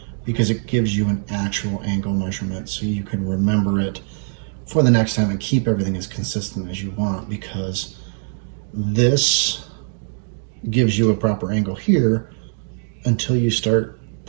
because it gives you an actual angle measurement so you can remember it for the next time and keep everything as consistent as you want, because this gives you a proper angle here until you start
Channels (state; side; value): silent; left; digital silence